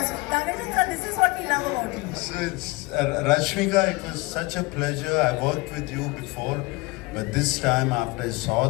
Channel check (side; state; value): right; quieter; 23.1 dB